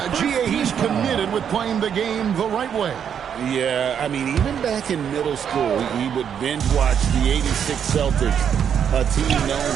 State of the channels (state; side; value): quieter; left; 8.2 dB